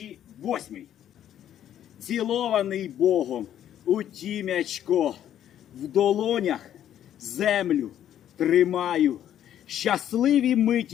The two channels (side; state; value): right; quieter; 10.8 dB